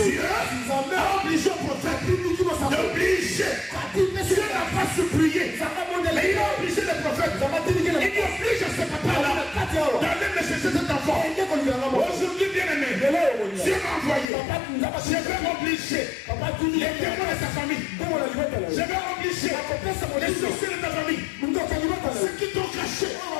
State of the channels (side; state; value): right; drops out; at 14.2 s